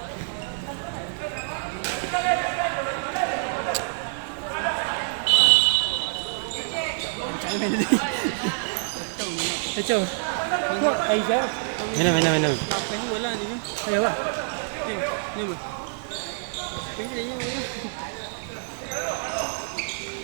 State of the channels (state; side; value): silent; left; 61 dB below the other